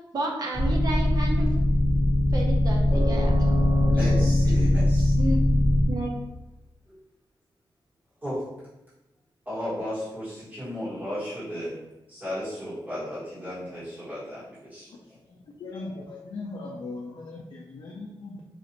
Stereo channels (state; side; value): normal; both; correlation 0.93